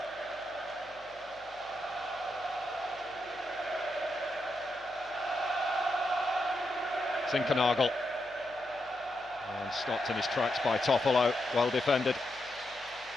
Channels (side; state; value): left; noise; hum, 28 dB below the sound